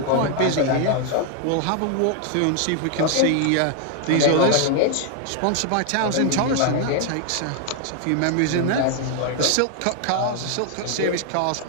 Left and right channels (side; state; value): both; different; correlation 0.00